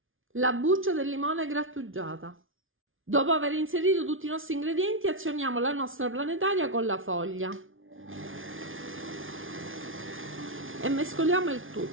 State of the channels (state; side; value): late; left; 0.58 ms